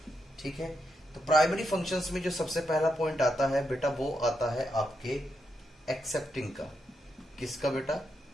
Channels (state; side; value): normal; both; correlation 0.83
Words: ठीक है। तो प्राइमरी फंक्शंस में जो सबसे पहला पॉइंट आता है बेटा, वो आता है आपके एक्सेप्टिंग का। किसका बेटा?